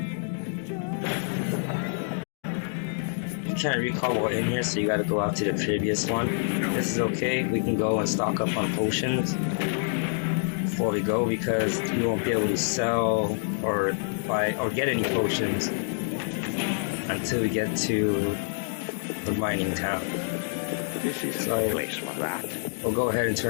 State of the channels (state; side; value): silent; right; digital silence